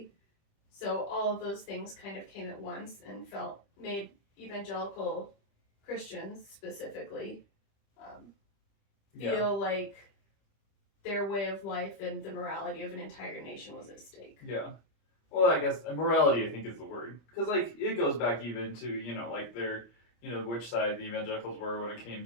So all of those things kind of came at once and made evangelical Christians specifically feel like their way of life and the morality of an entire nation was at stake. Yeah. Well, I guess morality, I think, is the word. Because, like, it goes back even to, like, their, which side the evangelicals were when it came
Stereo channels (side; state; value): right; late; 25 ms